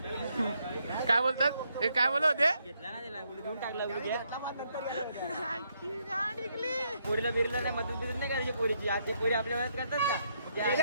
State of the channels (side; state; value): both; inverted; correlation -0.76